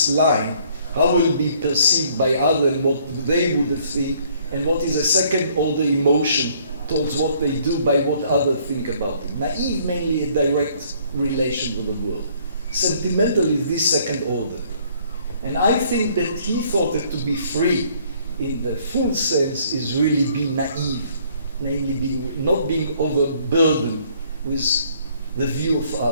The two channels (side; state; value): both; inverted; correlation -0.62